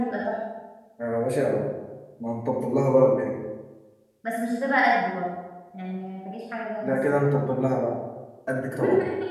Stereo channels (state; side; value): identical; both; correlation 1.00